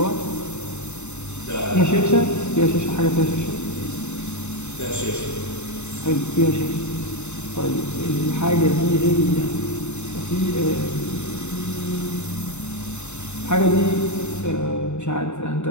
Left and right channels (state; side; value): late; right; 0.82 ms